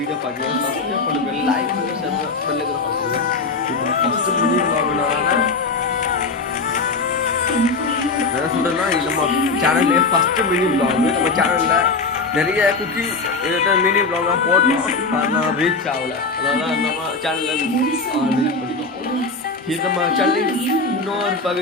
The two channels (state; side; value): quieter; right; 4.0 dB